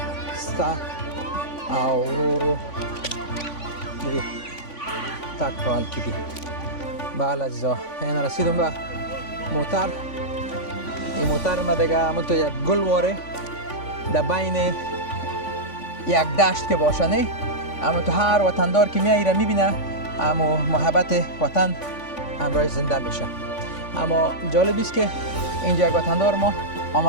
سته او ورو ورو د دې تګ په حال کې دي. بله عزیزا این رسیدم به موتر. این موتر ما دیگه همونطور یک گلواره در بین یک دشت که باشه نه همونطور هر وطندار که میایره میبینه اما محبت وطن همراه زنده میشه. اما جالب است که اینجا یک وطندار ما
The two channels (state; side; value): late; right; 3.5 ms